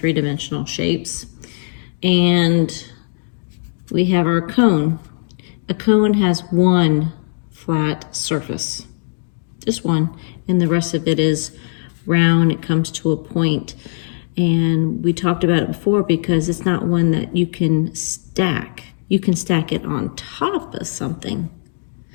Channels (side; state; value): right; silent; digital silence